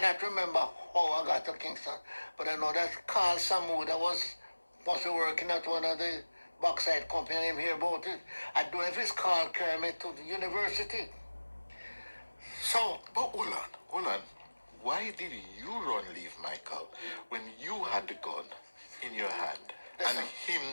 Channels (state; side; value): inverted; both; correlation -1.00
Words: remember how I got to Kingston, but I know that Carl Samu that was working at one of the bauxite company name here about it. I don't know if his Carl carried me to the university. So, But hold on. why did you run leave Michael when you had the gun in your hand and him